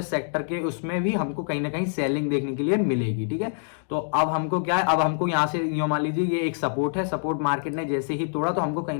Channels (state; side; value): silent; right; digital silence